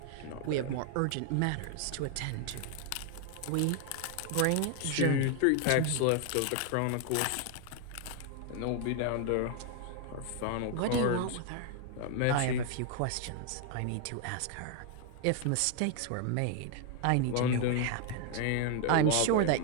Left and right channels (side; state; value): both; different; correlation 0.00